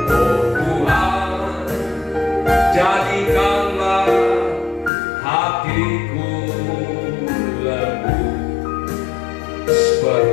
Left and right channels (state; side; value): drops out; right; at 4.9 s